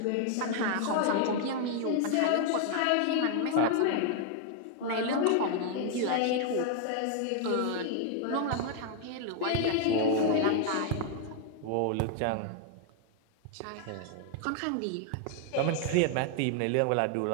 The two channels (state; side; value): different; both; correlation 0.00